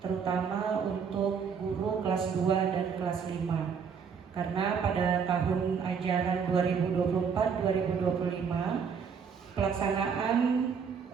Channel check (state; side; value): quieter; left; 6.5 dB